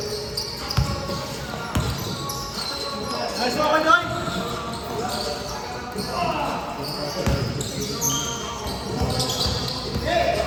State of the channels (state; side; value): identical; both; correlation 1.00